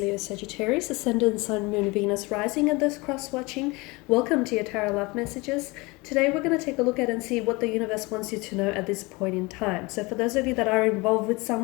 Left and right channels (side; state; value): right; quieter; 24.7 dB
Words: Sagittarius, Ascendant, Sun, Moon, Venus, Rising, and those cross-watching. Welcome to your Tarot Love Messages. Today we're going to take a look at and see what the universe wants you to know at this point in time. So for those of you that are involved with